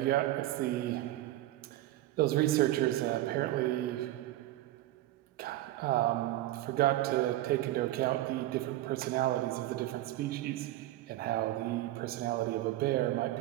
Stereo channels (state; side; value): quieter; left; 15.5 dB